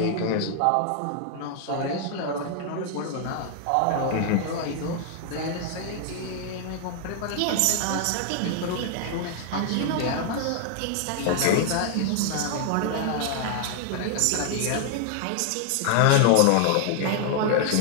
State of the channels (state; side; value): different; both; correlation 0.00